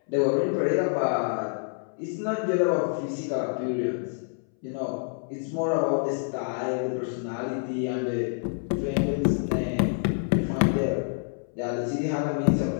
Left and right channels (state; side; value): silent; right; 60 dB below the other